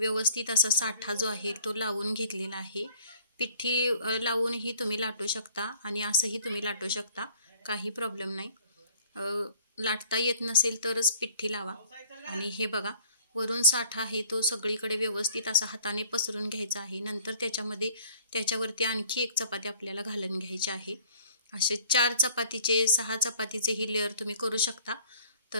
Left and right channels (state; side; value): inverted; both; correlation -0.55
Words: असा साठा जो आहे तो लावून घेतलेला आहे। पिठी लावूनही तुम्ही लाटू शकता आणि असंही तुम्ही लाटू शकता, काही प्रॉब्लेम नाही। लाटता येत नसेल तरच पिठी लावा। आणि हे बघा, वरून साठा आहे तो सगळीकडे व्यवस्थित असा हाताने पसरून घ्यायचा आहे। नंतर त्याच्यावरती आणखी एक चपाती आपल्याला घालून घ्यायची आहे। असे 4 चपातीचे 6 चपातीचे ही लेअर तुम्ही करू शकता।